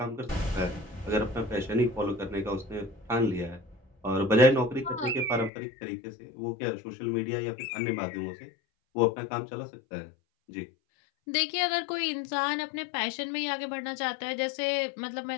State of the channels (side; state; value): right; drops out; at 5.5 s